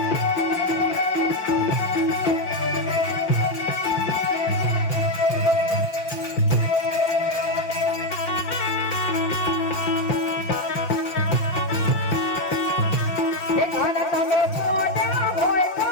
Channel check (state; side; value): late; right; 5.5 ms